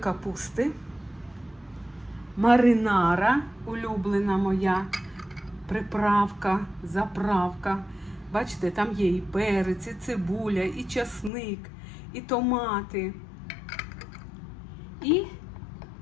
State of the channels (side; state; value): right; drops out; at 11.3 s